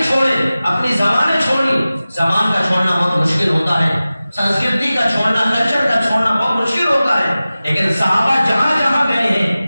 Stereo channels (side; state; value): both; inverted; correlation -0.96